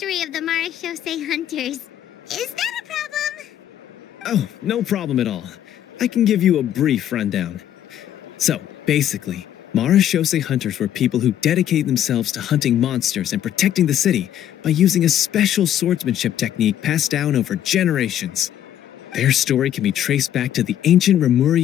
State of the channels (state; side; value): quieter; right; 11.0 dB